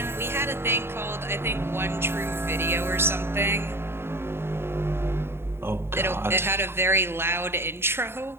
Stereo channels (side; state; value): left; late; 0.11 ms